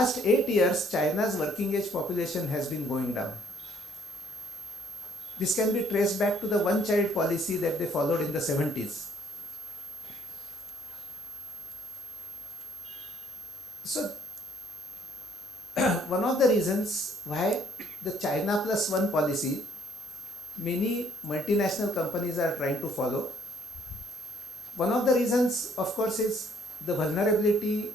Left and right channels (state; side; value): normal; both; correlation 0.64